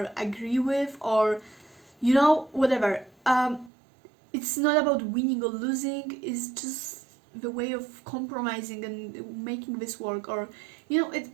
agree with, or you know, whatever. It's not about winning or losing. It's just the way of compromising and making this work. Or you know,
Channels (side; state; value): left; drops out; at 3.7 s